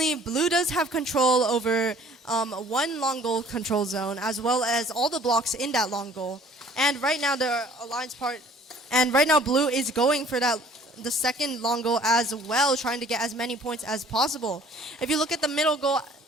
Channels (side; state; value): both; normal; correlation 0.54